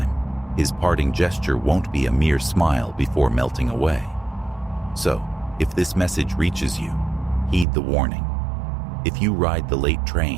his parting gesture won't be a mere smile before melting away. So, if this message reaches you, heed the warning. If you ride the late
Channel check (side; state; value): left; drops out; at 7.7 s